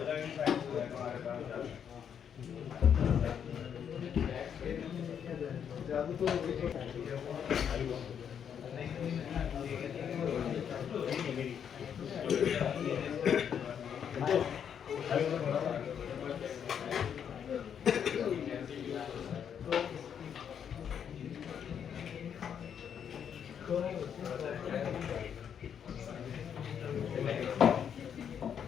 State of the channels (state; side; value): quieter; right; 8.2 dB